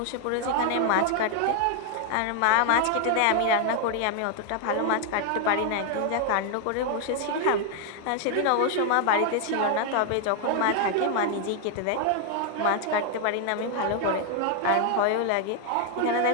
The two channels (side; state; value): both; different; correlation 0.00